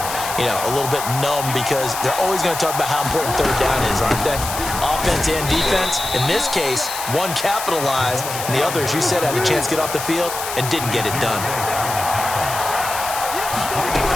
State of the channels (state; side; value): noise; left; hiss, 7 dB below the sound